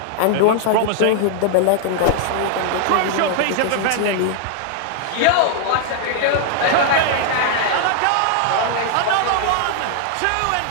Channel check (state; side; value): different; both; correlation 0.00